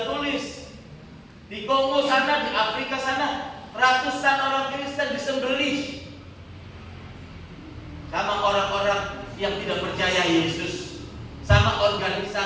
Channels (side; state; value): both; identical; correlation 1.00